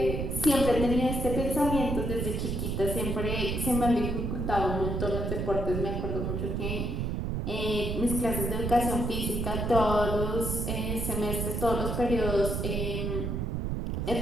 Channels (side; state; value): right; noise; rumble, 1 dB below the sound